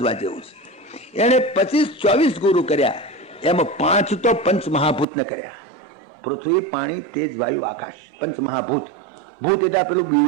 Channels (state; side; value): drops out; left; at 5.1 s